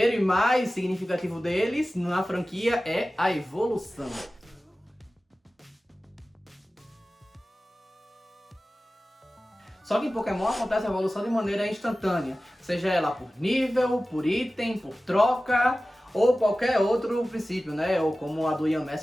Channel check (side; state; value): both; normal; correlation 0.96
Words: e mais significativo deles na franquia é a evolução. Só que em Pokémon acontece a evolução de maneira instantânea, seja ela por nível, por item, por troca ou qualquer outro princípio, né? Ou como a do